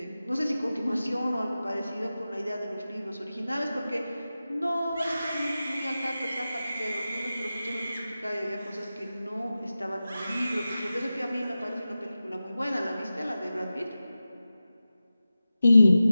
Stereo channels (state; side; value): inverted; both; correlation -0.94